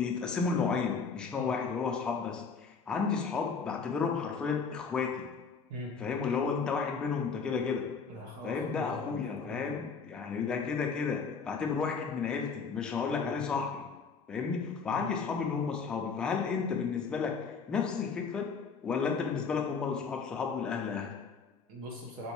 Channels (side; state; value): right; quieter; 5.3 dB